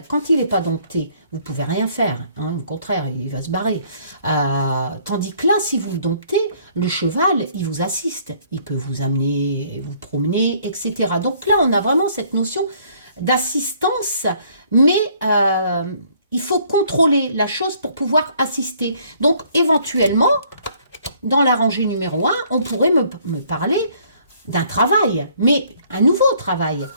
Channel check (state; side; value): inverted; both; correlation -0.61